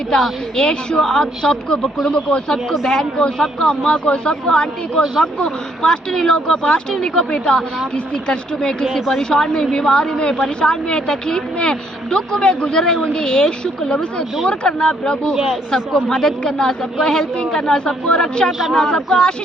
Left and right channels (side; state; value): both; normal; correlation 0.69